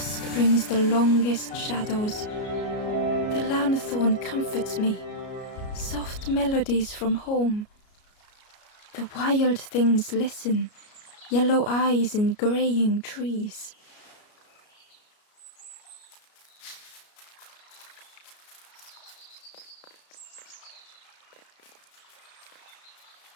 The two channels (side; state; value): right; late; 33 ms